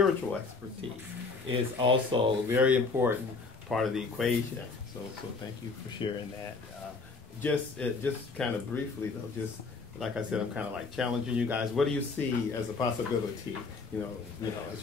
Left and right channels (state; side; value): quieter; right; 4.3 dB